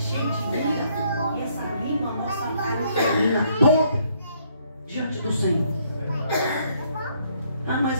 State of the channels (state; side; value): inverted; both; correlation -0.68